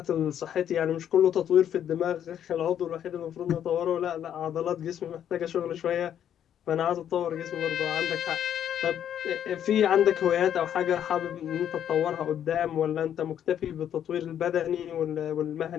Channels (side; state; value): right; quieter; 9.8 dB